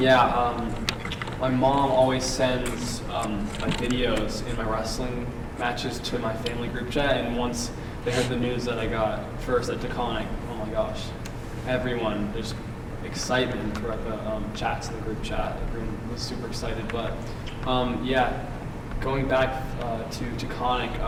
yeah. My mom always sends my videos in my wrestling matches to my family group chat, and once they heard the news that I got first at Taconic, oh my gosh, everyone just excitement throughout the chats in the group chat. Everyone was super excited. But going back to Taconic,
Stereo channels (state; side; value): identical; both; correlation 1.00